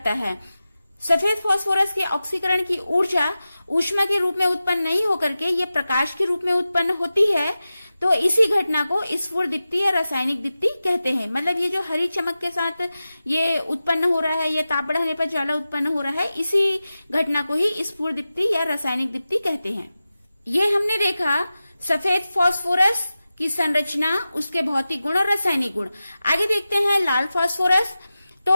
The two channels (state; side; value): inverted; both; correlation -0.94